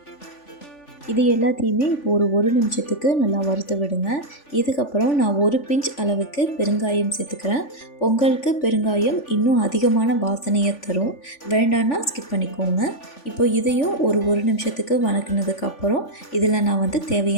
இது எல்லாத்தையுமே இப்போ ஒரு நிமிஷத்துக்கு நல்லா வறுத்து விடுங்க. இதுக்கப்புறம் நான் 1 பிஞ்ச் அளவுக்கு பெருங்காயம் சேர்த்துக்கிறேன். பொங்கலுக்கு பெருங்காயம் இன்னும் அதிகமான வாசனையை தரும். வேண்டான்னா ஸ்கிப் பண்ணிக்கோங்க. இப்போ இதையும் ஒரு நிமிஷத்துக்கு வணக்கினதுக்கப்புறம் இதில் நான் வந்து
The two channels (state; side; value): late; right; 3.5 ms